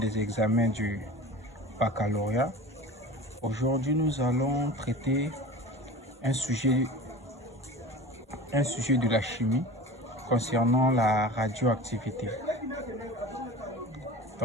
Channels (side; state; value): both; normal; correlation 0.35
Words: examens du baccalauréat. Aujourd'hui, nous allons traiter un sujet de la chimie concernant la radioactivité.